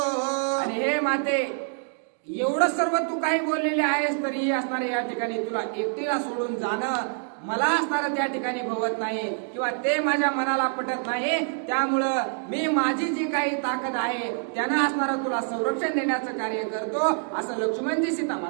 आणि हे माते, एवढं सर्व तू काही बोललेले आहेस, तरी असणारे या ठिकाणी तुला एकटीला सोडून जाणं मला असणारं त्या ठिकाणी भवत नाही किंवा ते माझ्या मनाला पटत नाही. त्यामुळं मी माझी जी काही ताकद आहे त्यानं असणारं तुला संरक्षण देण्याचं कार्य करतो, असं लक्ष्मणजी सीता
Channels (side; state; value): left; silent; 61 dB below the other